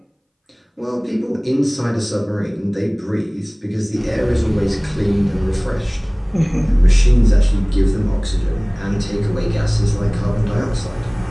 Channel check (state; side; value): identical; both; correlation 1.00